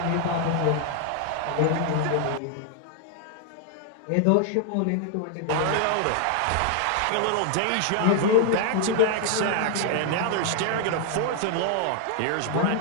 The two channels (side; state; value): both; different; correlation 0.00